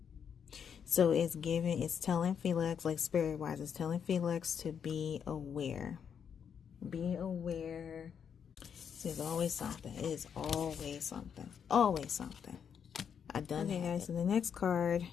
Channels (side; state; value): right; quieter; 7.5 dB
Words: So it's telling Felix, like Spirit wise, it's telling Felix to be aware. Be aware. There's always something. It is always something. Always something. I done it, guys. So the next card,